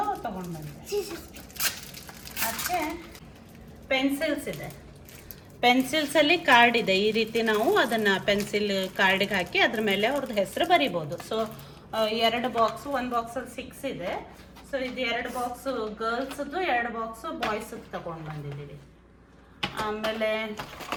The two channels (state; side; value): identical; both; correlation 1.00